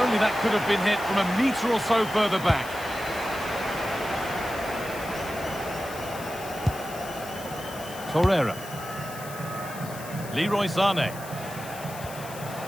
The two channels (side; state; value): left; noise; hiss, 15 dB below the sound